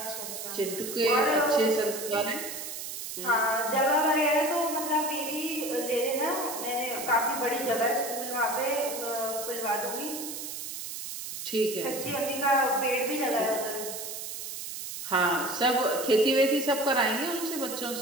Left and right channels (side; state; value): right; noise; hiss, 7 dB below the sound